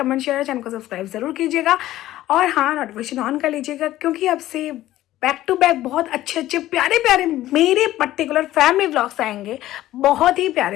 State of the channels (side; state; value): right; quieter; 14.7 dB